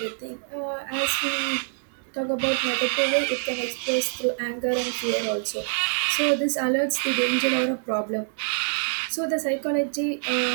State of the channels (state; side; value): silent; left; digital silence